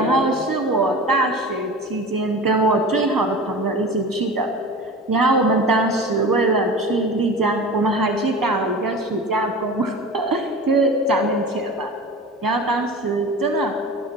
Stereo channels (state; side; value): normal; both; correlation 0.34